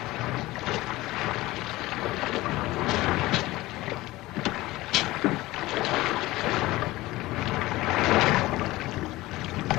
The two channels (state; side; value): quieter; right; 18.7 dB